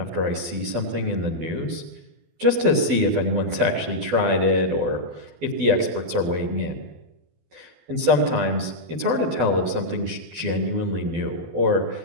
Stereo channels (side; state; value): left; late; 12 ms